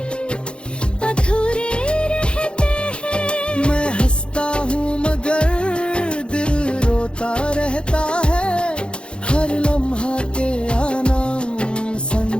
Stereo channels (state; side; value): late; right; 0.055 ms